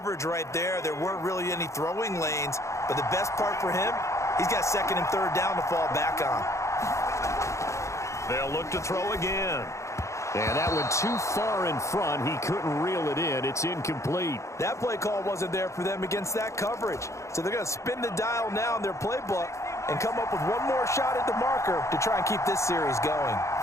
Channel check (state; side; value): late; right; 0.14 ms